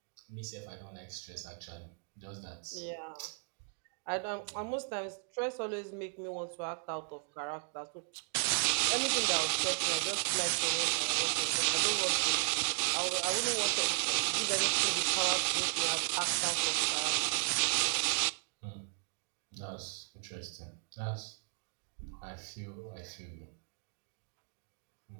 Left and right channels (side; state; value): left; silent; 54 dB below the other